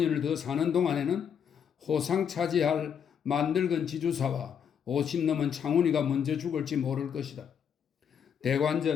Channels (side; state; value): right; quieter; 7.8 dB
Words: 더 사는 동안에는 호상 차지할 만늙은 지주사와 50 넘은 창훈이가 먼저 죽을지 모를 것이다.